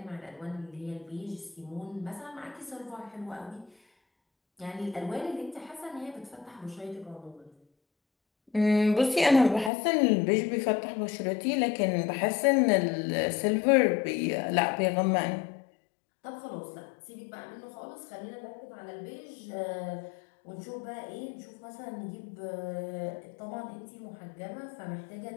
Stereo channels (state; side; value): drops out; right; at 9.7 s